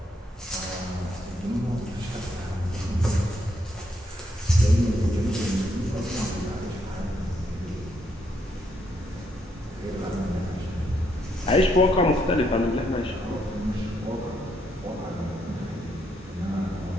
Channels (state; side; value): normal; both; correlation 0.75